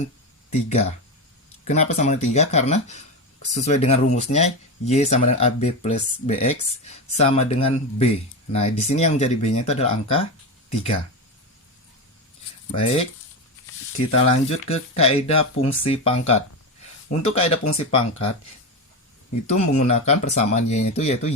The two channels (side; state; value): both; normal; correlation 0.17